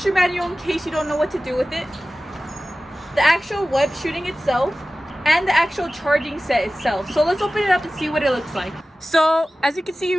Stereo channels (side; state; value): both; normal; correlation 0.96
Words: manual in case you don't know what to do with it, the actual web shooting itself, and the actual charging set itself. So let's open it up and see what it looks like. So as you can see,